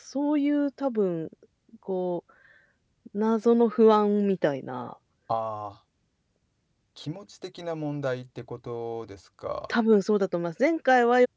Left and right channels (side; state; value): both; identical; correlation 1.00